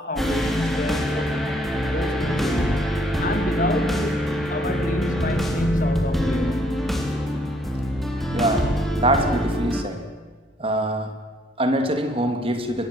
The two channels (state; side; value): normal; both; correlation 0.66